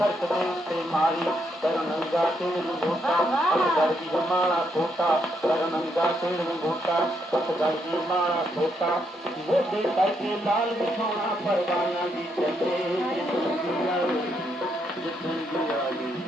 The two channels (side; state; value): both; normal; correlation 0.77